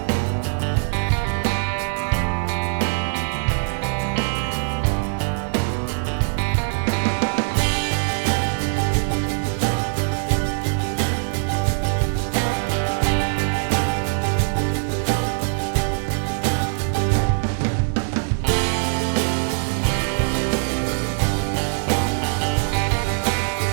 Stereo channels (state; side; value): silent; left; digital silence